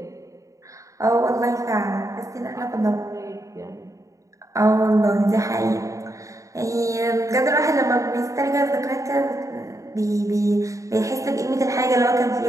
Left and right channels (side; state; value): left; late; 0.16 ms